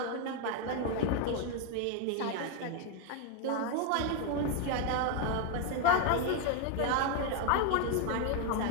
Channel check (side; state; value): both; different; correlation 0.01